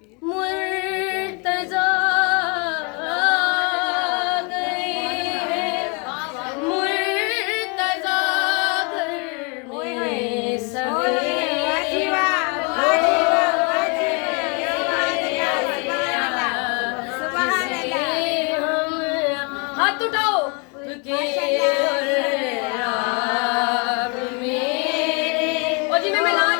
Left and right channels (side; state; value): right; quieter; 32.3 dB